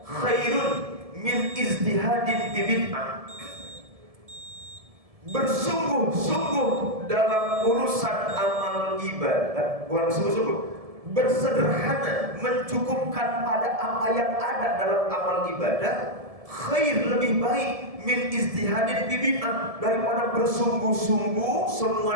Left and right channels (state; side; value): late; left; 1.7 ms